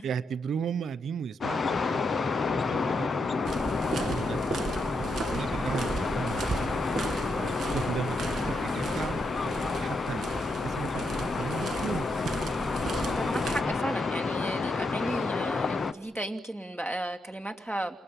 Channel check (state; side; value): normal; both; correlation 0.81